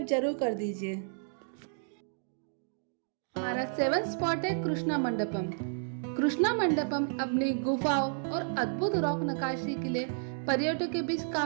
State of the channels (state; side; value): silent; left; digital silence